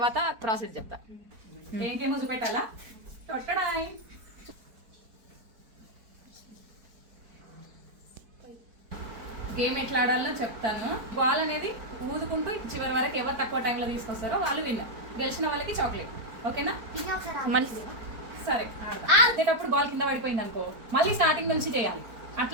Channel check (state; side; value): late; left; 4.5 ms